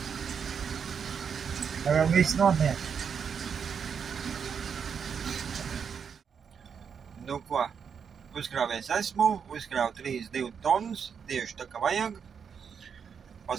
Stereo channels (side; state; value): left; quieter; 6.8 dB